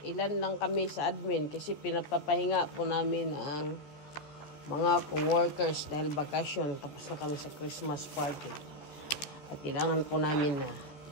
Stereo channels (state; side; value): late; right; 14 ms